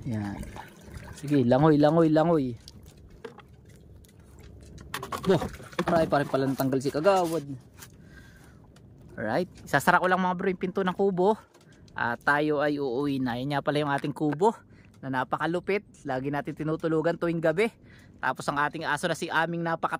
Yan. Sige, langoy, langoy, langoy. Boh, marami pa rin pala natanggal si kagawad. Alright, isasara ko lang mga bro yung pinto ng kubo. At tayo ay uuwi na. Yan nga pala yung ating kubo na napakalupit. Lagi natin tinutulugan tuwing gabi. Tapos ang ating aso na si Aming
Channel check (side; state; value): both; identical; correlation 1.00